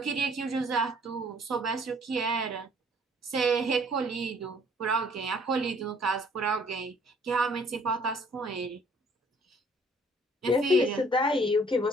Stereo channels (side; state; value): both; normal; correlation 0.59